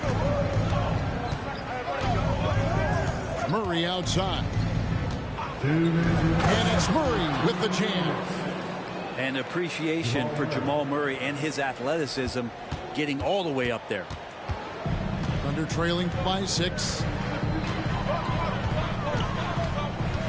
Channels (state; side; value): identical; both; correlation 1.00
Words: Murray outside. And it's Murray with the jam. And appreciation for Jamal Murray and his athleticism getting all the way up there. Thunder trailing by 6.